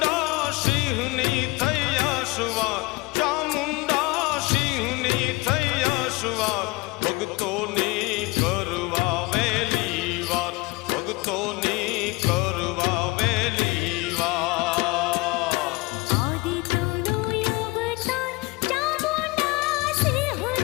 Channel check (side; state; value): right; quieter; 23.9 dB